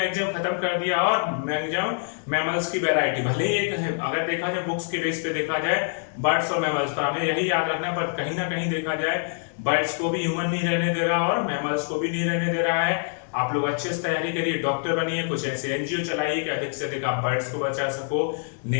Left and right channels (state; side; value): silent; right; digital silence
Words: खत्म कर दिया और मैक्सिमम मैमल्स की वैरायटी भले ही एक है। अगर देखा जाए बुक्स के बेस पे देखा जाए बर्ड्स और मैमल्स पर, हमें यही याद रखना। पर कहीं ना कहीं देखा जाए बर्ड्स को भी ह्यूमन नहीं रहने दे रहा और मैमल्स को भी नहीं रहने दे रहा है। आप लोग अच्छे से तैयारी करिए, डॉक्टर बनिए, कुछ ऐसे एनजीओ चलाइए कि अधिक से अधिक आप बर्ड्स को बचा सको,